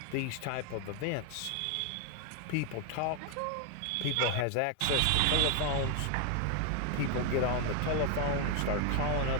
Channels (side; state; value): both; different; correlation 0.01